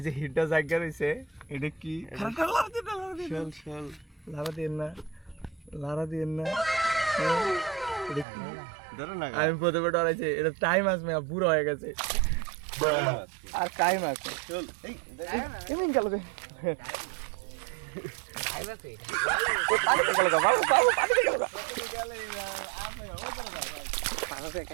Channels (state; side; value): drops out; left; at 8.2 s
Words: যে হিটটা জায়গা রয়েছে, এটা কি? লারা দিন না, লারা দিন না। আমি প্রথমে ডরাইছি, এটা টাইম আসবে, বুড়ো হয়ে গেছে আর টাইম আছে। এমন গেল